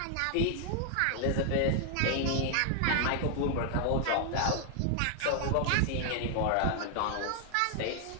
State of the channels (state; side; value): different; both; correlation 0.00